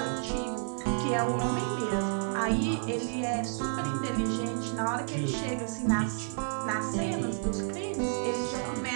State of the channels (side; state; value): left; silent; 57 dB below the other